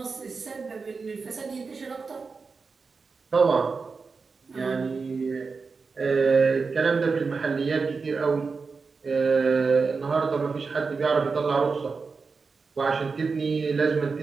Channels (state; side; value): quieter; left; 4.7 dB